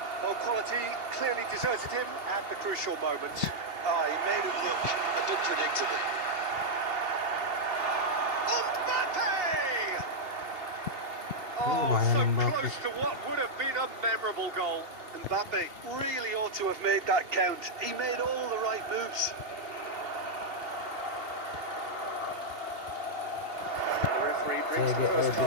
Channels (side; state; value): left; late; 2.7 ms